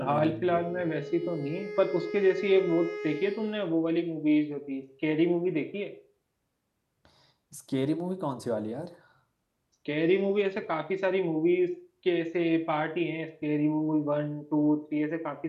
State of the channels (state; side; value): identical; both; correlation 1.00